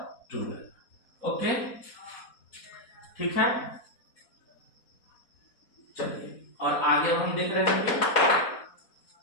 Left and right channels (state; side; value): late; right; 4.2 ms